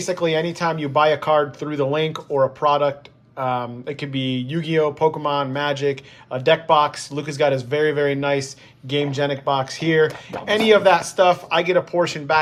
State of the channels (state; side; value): identical; both; correlation 1.00